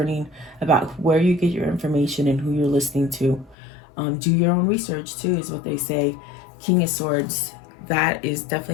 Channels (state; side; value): drops out; right; at 3.6 s